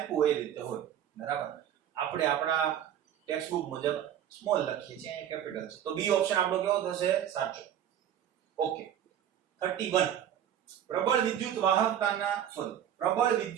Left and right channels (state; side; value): quieter; left; 10.2 dB